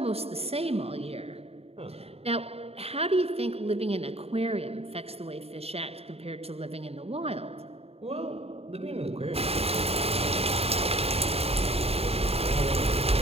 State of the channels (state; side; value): late; left; 0.29 ms